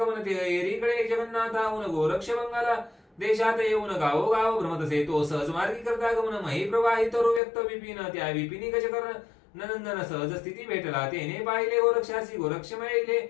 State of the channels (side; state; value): right; drops out; at 7.4 s